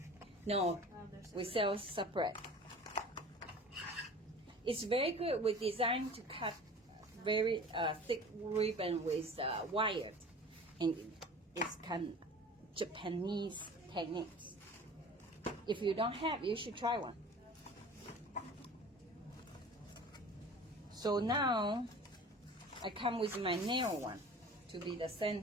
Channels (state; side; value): normal; both; correlation 0.42